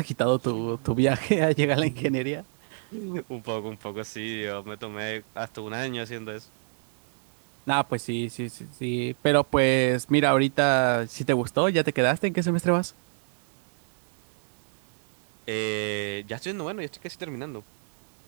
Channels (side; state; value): left; silent; 59 dB below the other